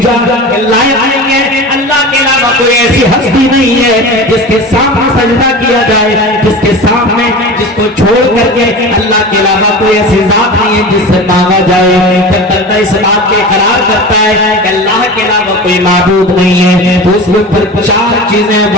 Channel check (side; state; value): both; normal; correlation 0.32